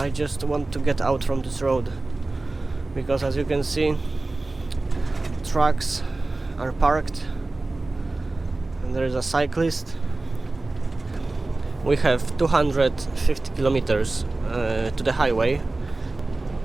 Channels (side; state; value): left; quieter; 3.1 dB